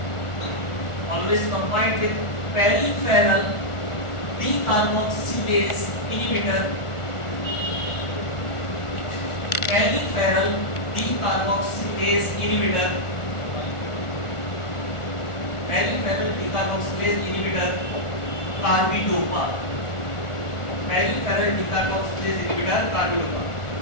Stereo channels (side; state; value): right; late; 1.4 ms